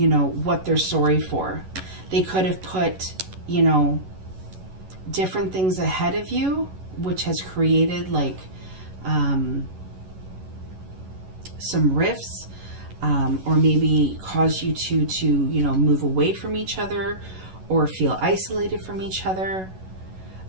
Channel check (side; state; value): left; late; 11 ms